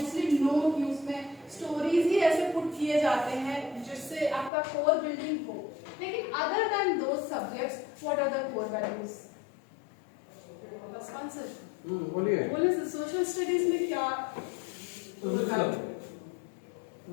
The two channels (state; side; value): drops out; right; at 4.5 s